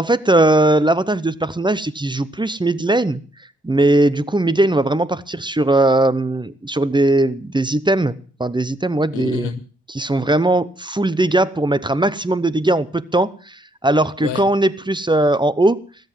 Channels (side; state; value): both; normal; correlation 0.72